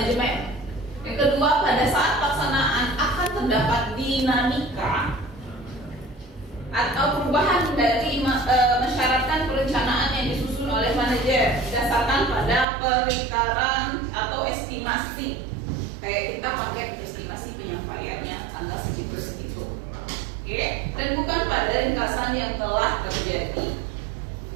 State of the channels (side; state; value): left; drops out; at 12.7 s